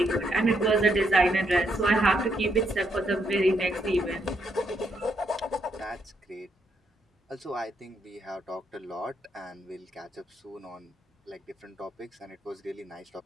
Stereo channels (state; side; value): normal; both; correlation 0.76